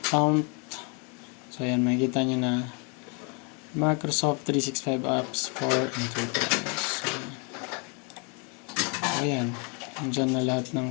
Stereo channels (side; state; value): right; quieter; 34.5 dB